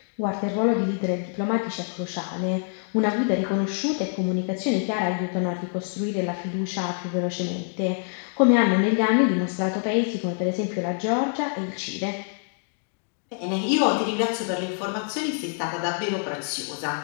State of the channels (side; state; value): right; silent; 61 dB below the other